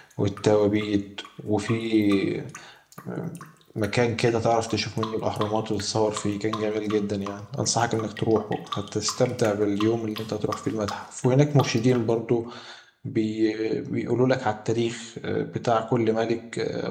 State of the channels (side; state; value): both; identical; correlation 1.00